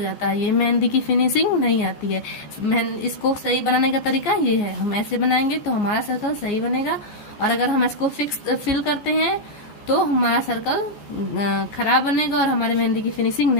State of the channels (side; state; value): right; late; 14 ms